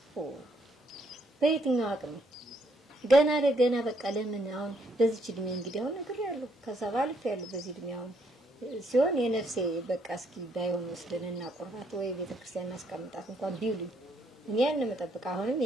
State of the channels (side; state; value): both; normal; correlation 0.71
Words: በየትኛው አቅም ገና ለገና በቃ ለምን አሁን በዚህ እድሜ እንግዲህ አሁን ነገር ያለው ከሰባልፍ ያለው በዚህ እድሜ አሁን ሲሆን የነፍሴ በቃ እስኪ ባይሆን ወስደንና ቁርባት ወይ ቤተክርስቲያን አስቀምጣት እንኳን ቢውልኝ እኔ ያን መጠበቅ አሁንም